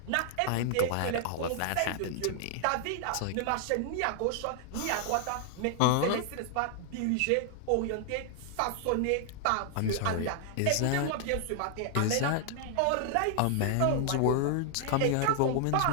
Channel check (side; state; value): both; different; correlation 0.00